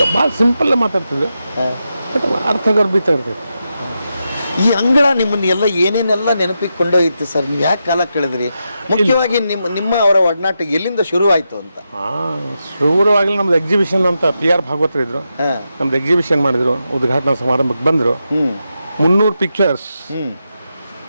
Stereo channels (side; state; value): both; inverted; correlation -0.87